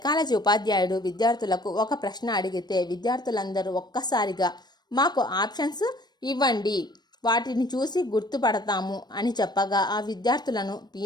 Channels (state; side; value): late; right; 0.20 ms